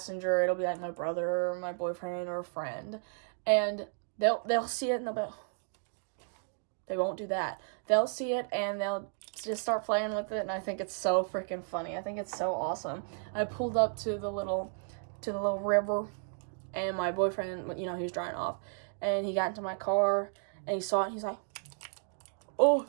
it'll be, like, my brother or my boyfriend or a friend, and they'll see it, and they'll be, they won't do that. They'll see it, and they'll just start playing with it, and I think it's so freaking funny. I think it's so awesome. I pulled up to the little river, and my boyfriend, you know, he was drying off, and he got into my car, and he saw it, and he's like, oh,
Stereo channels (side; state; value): left; silent; digital silence